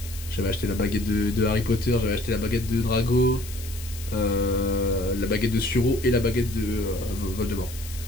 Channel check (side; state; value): left; noise; hiss, 14 dB below the sound